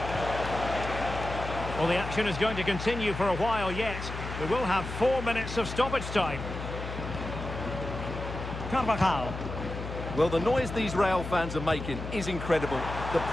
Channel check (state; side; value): noise; left; hum, 7 dB below the sound